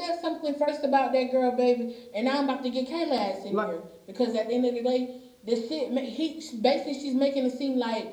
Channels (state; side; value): identical; both; correlation 1.00